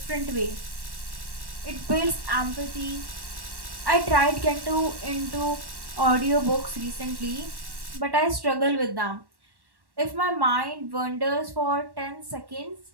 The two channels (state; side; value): late; left; 1.1 ms